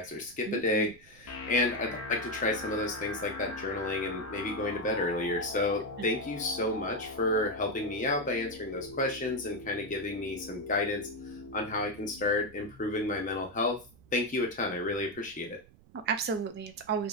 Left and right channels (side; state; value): right; noise; rumble, 25 dB below the sound